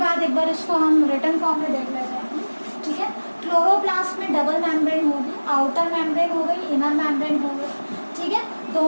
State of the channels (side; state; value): both; inverted; correlation -1.00